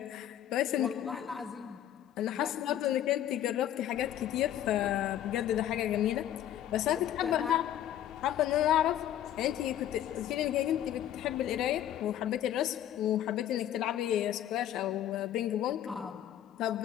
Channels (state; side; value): quieter; right; 11.4 dB